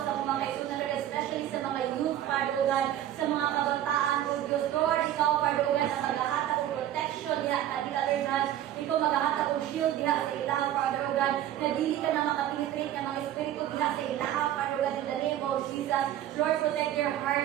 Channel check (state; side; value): quieter; left; 12.1 dB